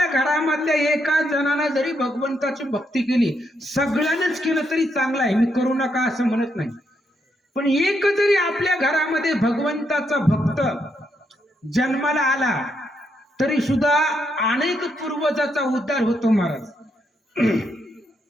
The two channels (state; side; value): normal; both; correlation 0.78